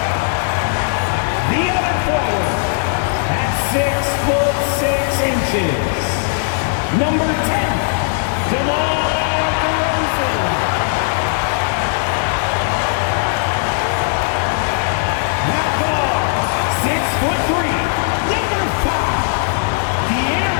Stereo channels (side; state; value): right; silent; 66 dB below the other